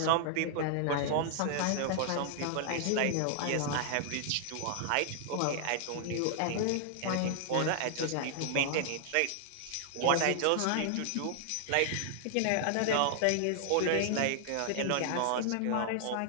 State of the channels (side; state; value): both; different; correlation -0.01